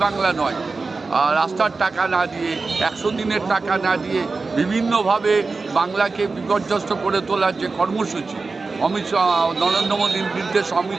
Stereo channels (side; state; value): left; quieter; 4.0 dB